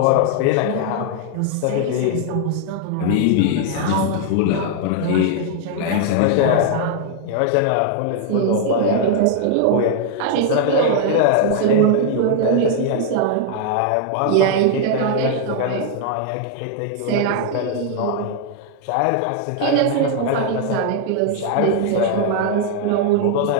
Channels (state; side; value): different; both; correlation 0.00